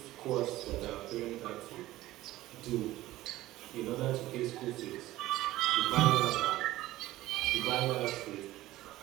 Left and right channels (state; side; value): quieter; left; 16.2 dB